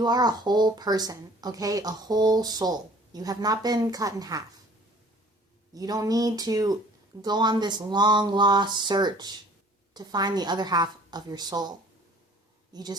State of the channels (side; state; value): both; normal; correlation 0.51